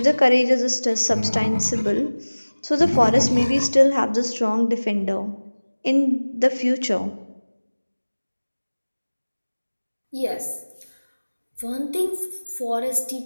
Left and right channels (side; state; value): both; inverted; correlation -1.00